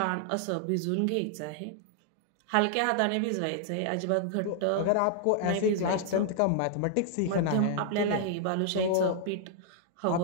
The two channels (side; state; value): both; different; correlation -0.01